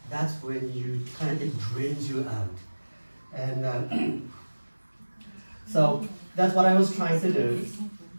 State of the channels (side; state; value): both; inverted; correlation -1.00